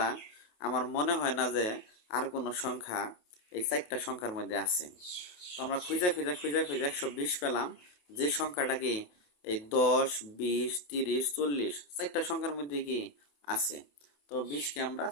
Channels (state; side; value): late; right; 28 ms